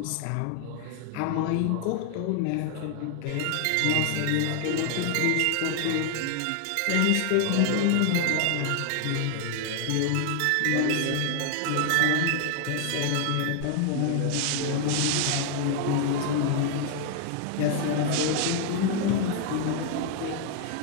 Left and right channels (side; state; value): both; different; correlation 0.00